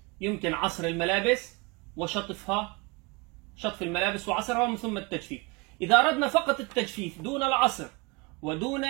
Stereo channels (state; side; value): quieter; left; 27.5 dB